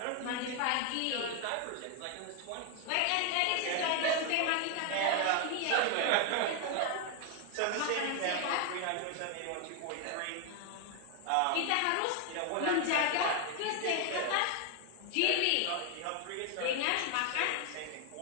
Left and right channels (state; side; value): different; both; correlation 0.01